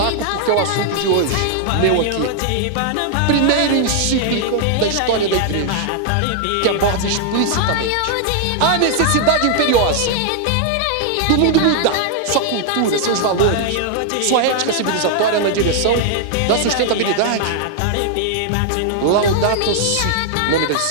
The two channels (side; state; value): both; different; correlation 0.00